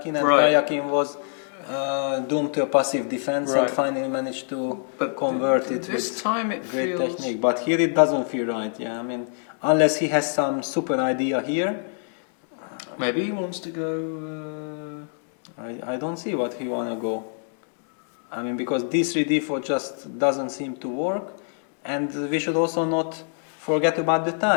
and Right. Karyakin was doomed to a passive defense and Right. finally managed to But convert it this with time it great feels... technique. But here it doesn't feel right. Yeah, I mean, unless he has some super idea here, Maybe he wants to go... I don't see what he wanna go. I mean, because d3 d4 just doesn't seem to work, and we should also not forget about the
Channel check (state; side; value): silent; right; digital silence